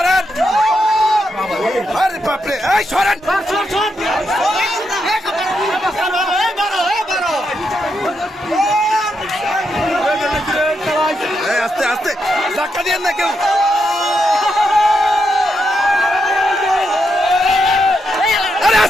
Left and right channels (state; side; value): normal; both; correlation 0.82